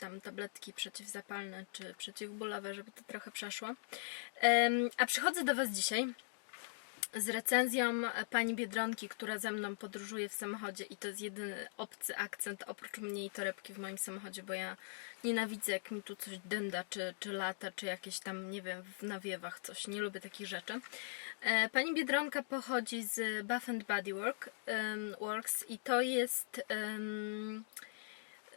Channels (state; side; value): silent; right; digital silence